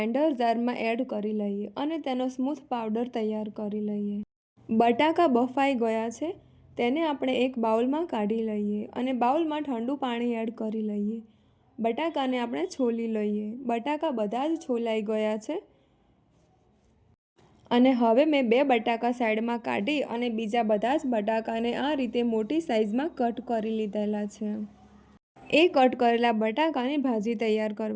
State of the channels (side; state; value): both; identical; correlation 1.00